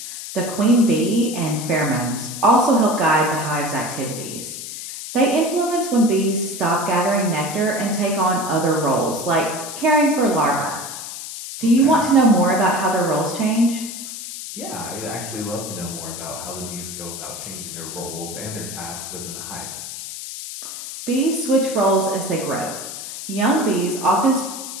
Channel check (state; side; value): noise; left; hiss, 9 dB below the sound